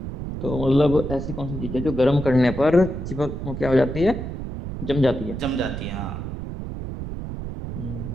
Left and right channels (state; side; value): noise; right; rumble, 7 dB below the sound